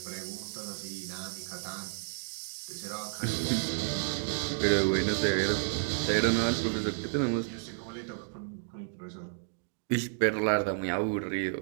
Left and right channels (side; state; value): left; silent; digital silence